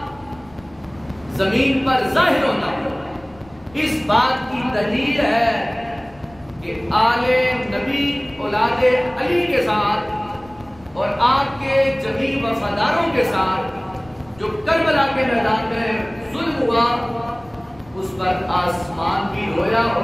زمین پر ظاہر ہونا، اس بات کی دلیل ہے کہ آل نبی اولاد علی کے ساتھ اور آپ کے جمیع وفاداروں کے ساتھ جو کربلا کے میدان میں ظلم ہوا، اس پر آسمان بھی رویا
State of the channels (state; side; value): noise; left; rumble, 25 dB below the sound